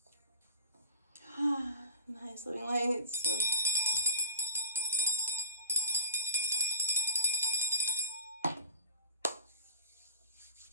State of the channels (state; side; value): inverted; both; correlation -0.37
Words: Nice living lights. So